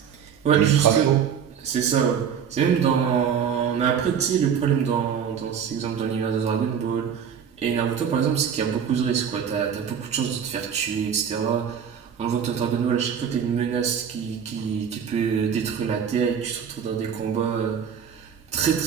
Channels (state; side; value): quieter; left; 7.7 dB